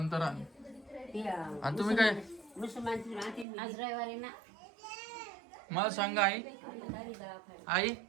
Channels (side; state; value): left; drops out; at 3.5 s